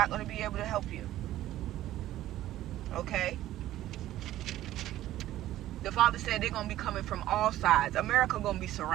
going to be able to help you. Okay? The Father said they're going to be coming from all sides. America going to be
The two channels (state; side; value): quieter; left; 14.0 dB